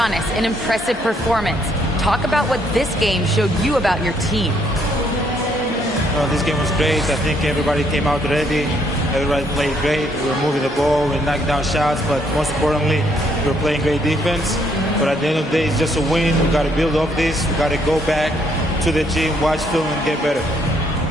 an impressive performance. Talk about what this game showed you about your team. This game was great. I think everybody came out ready. Everybody played great. We were moving the ball, we knocked down shots, but most importantly, we were playing great defense. But at the end of the day, it's just a win. We got to build off this. We got to go back to the gym, watch film, and get better.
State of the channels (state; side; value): normal; both; correlation 0.70